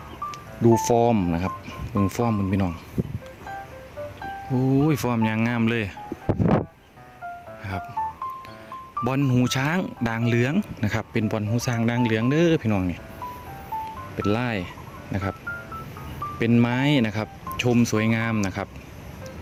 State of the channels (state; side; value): identical; both; correlation 1.00